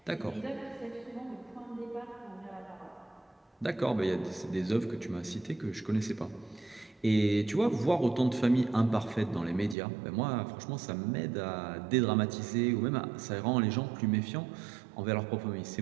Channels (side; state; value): left; drops out; at 9.8 s